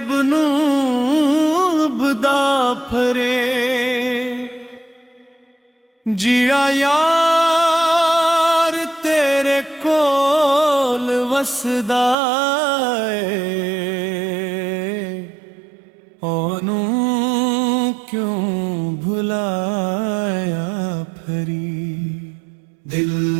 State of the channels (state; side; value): drops out; left; at 12.2 s